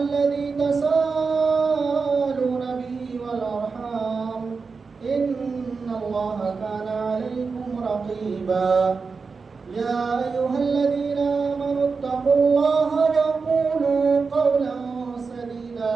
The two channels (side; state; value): left; quieter; 4.8 dB